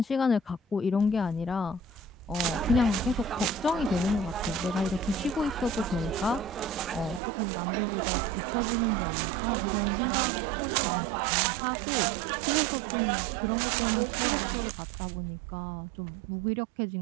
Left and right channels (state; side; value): drops out; left; at 7.2 s